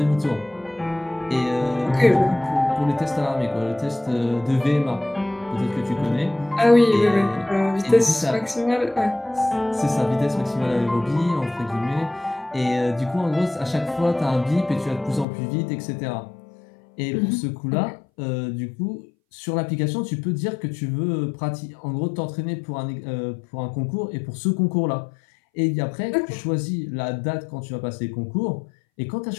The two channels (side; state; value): right; drops out; at 15.2 s